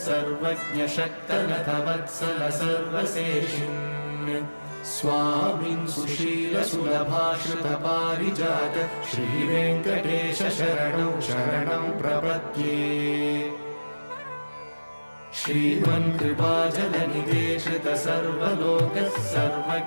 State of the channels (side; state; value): both; inverted; correlation -1.00